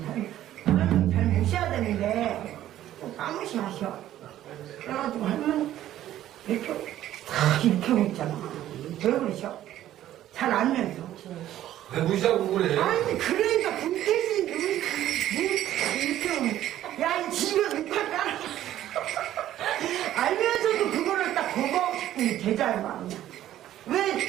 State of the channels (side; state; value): left; quieter; 12.8 dB